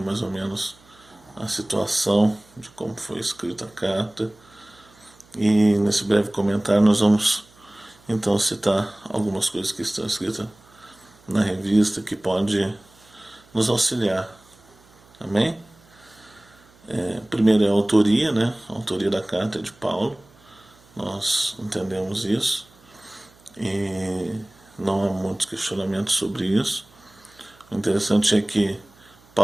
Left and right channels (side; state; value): right; noise; hum, 28 dB below the sound